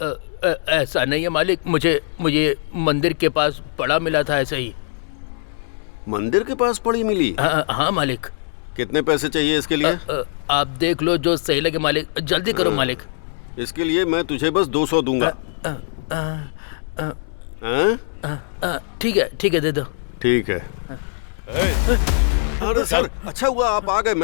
ऐसा नहीं है मालिक, मुझे मंदिर के पास पड़ा मिला था, ऐसे ही। मंदिर के पास पड़ी मिली? हाँ मालिक। कितने पैसे चाहिए इसके लिए? आप देख लो जो सही लगे मालिक, जल्दी करो मालिक। इसके लिए मैं तुझे बस 200 दूंगा। ठीक है, दे दो। ठीक है। अरे सर, अच्छा हुआ आप आ गए,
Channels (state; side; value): silent; right; 65 dB below the other